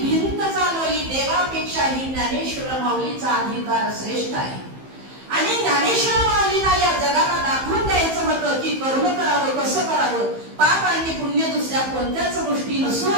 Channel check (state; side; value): late; left; 15 ms